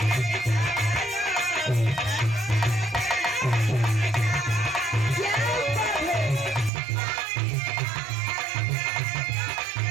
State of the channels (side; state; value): left; drops out; at 6.7 s